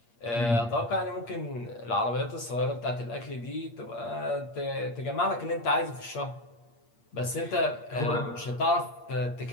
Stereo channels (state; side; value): late; right; 8.5 ms